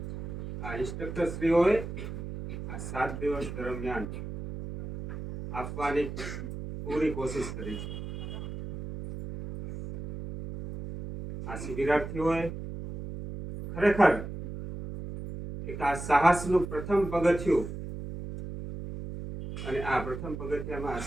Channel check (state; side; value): noise; right; hum, 8 dB below the sound